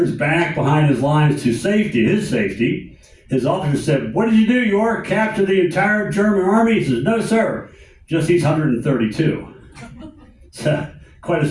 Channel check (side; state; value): both; identical; correlation 1.00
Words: back behind his lines to safety, his officer said, "What did you do, York? Capture the entire German army?" He says, "No, sir, just these 132. So, quite a